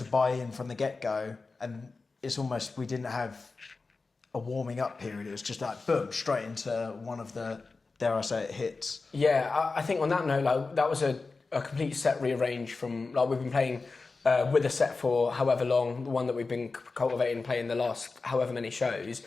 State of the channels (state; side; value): quieter; right; 4.0 dB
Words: buy in from the get-go, and it's almost we didn't have a warming up period. It was just like boom, straight into one of the, dare I say it, hits. Yeah, I think on that note, like that was a complete set rearrange from like we've been playing with a set for however long, the one that we've been cultivating playing the last however many shows.